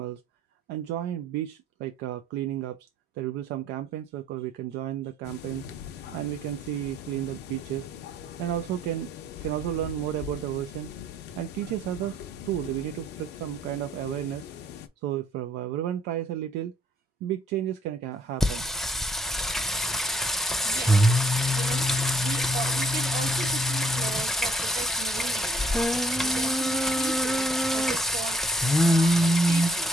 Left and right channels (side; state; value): both; normal; correlation 0.63